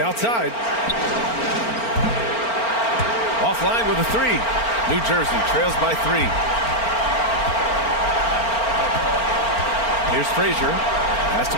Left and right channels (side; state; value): right; late; 4.4 ms